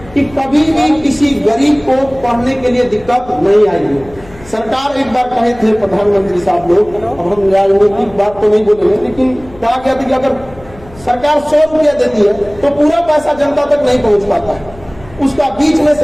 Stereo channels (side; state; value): left; noise; hum, 21 dB below the sound